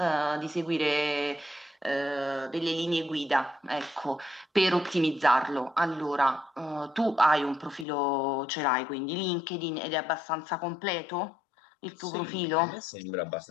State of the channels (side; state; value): right; drops out; at 7.9 s